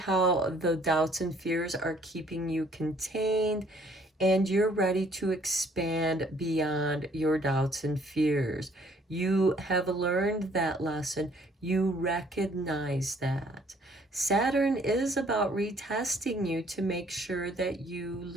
the doubts and fears are keeping you contained, and you're ready to expand beyond your doubts and fears. You have learned that lesson. You recognize that. Saturn is about retesting you to make sure that you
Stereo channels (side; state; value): both; normal; correlation 0.61